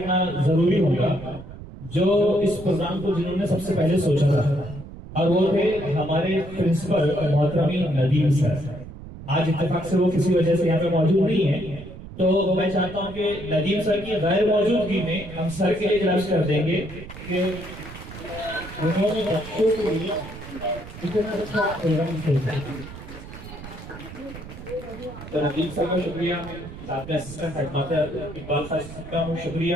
जरूरी होगा जो इस प्रोग्राम को जिन्होंने सबसे पहले सोचा था, और वो थे हमारे प्रिंसिपल मोहतरमी नदीम सर। आज इत्तेफाक से वो किसी वजह से यहाँ पे मौजूद नहीं है, तो मैं चाहता हूँ कि नदीम सर की गैर मौजूदगी में हम सर के लिए इजलास कर देंगे कि उन्होंने बच्चों के लिए इतना अच्छा प्रोग्राम किया। तो नदीम सर का शुक्रिया, साथ में असिस्टेंट हेडमास्टर इकबाल खान का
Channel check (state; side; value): noise; right; rumble, 14 dB below the sound